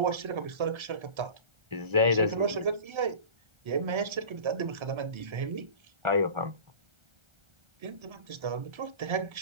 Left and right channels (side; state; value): left; late; 1.3 ms